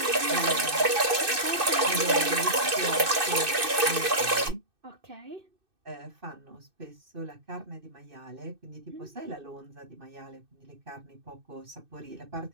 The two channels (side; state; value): left; late; 2.6 ms